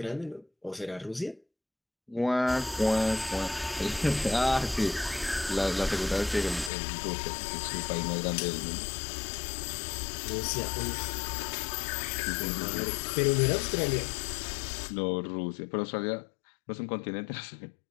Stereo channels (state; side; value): drops out; right; at 6.7 s